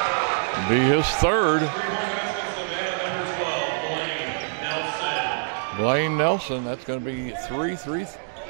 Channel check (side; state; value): left; silent; digital silence